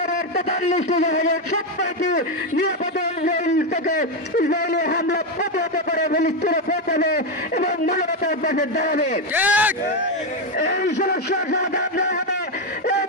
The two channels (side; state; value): both; normal; correlation 0.07